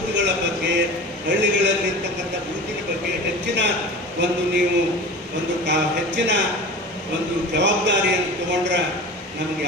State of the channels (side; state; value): both; normal; correlation 0.35